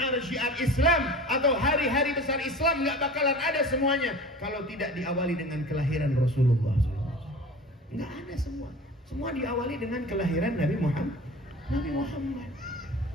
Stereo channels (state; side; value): normal; both; correlation 0.38